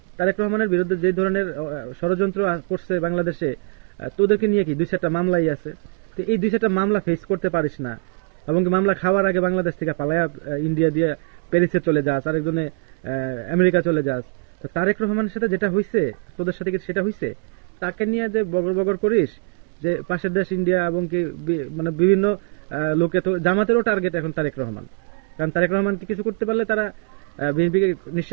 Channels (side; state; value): left; quieter; 36.3 dB